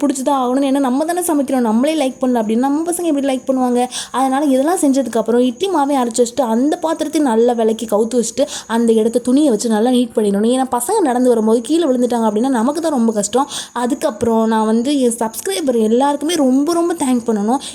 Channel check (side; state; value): both; identical; correlation 1.00